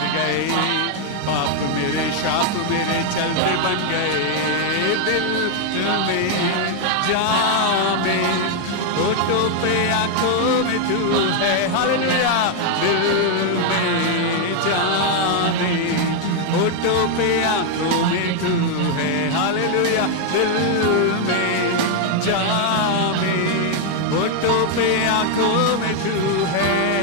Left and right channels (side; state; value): both; different; correlation 0.00